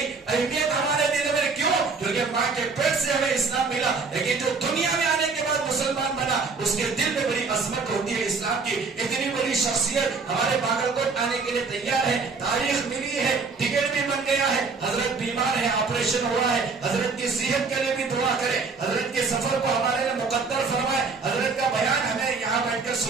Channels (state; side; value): quieter; left; 4.6 dB